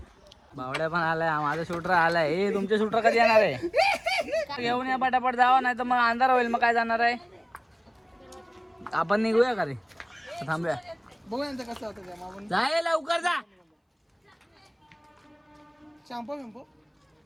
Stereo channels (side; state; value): both; identical; correlation 1.00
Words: भावड्या पण आलाय, माझा शूटर आलाय. हे तुमचे शूटर कधी येणार आहे? घेऊन या पटापट जावा, नाही तर मग अंधार होईल. मग काय जाणार आहे? आपण निघूया का रे? थांबूया. बघूया कसं होतं. जाय लवकर जा. शॅम्पू बिंपू